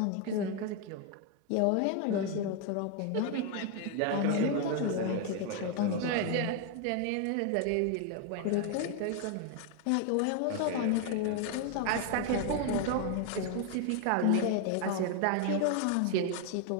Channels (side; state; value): both; different; correlation 0.01